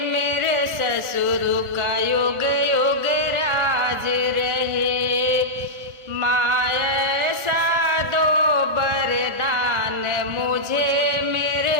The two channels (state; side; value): late; left; 1.4 ms